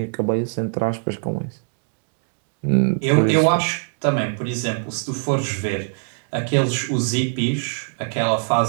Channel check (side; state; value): left; silent; digital silence